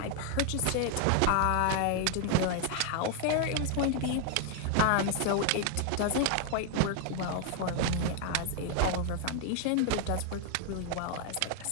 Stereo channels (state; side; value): different; both; correlation 0.00